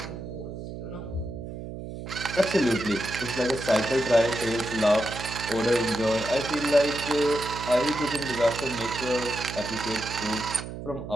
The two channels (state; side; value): noise; right; hum, 9 dB below the sound